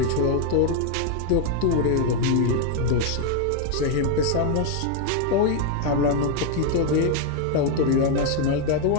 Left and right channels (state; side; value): different; both; correlation 0.01